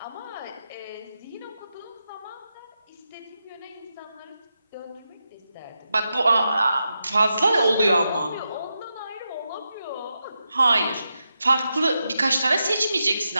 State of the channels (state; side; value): inverted; both; correlation -0.87